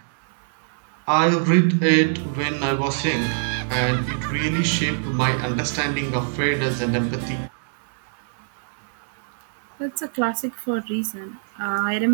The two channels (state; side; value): silent; left; digital silence